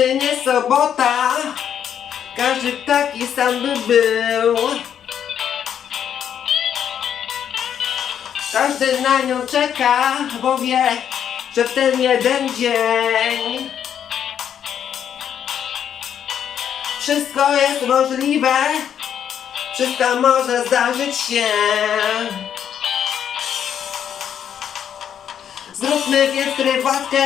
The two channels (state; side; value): quieter; right; 9.0 dB